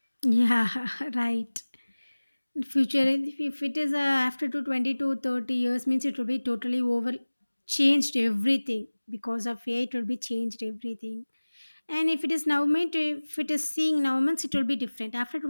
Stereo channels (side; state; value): both; inverted; correlation -1.00